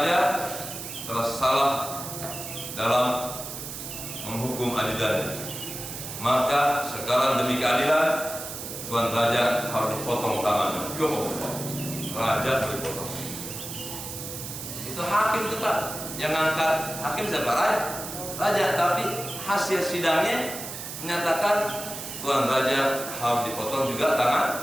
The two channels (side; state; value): right; noise; hiss, 8 dB below the sound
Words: telah salah dalam menghukum ajudannya. Maka sekarang demi keadilan, Tuan Raja harus dipotong tangannya. Raja dipotong. Itu hakim itu Pak, yang ngangkat hakim siapa? Raja. Tapi hasil sidangnya menyatakan Tuan Raja harus dipotong juga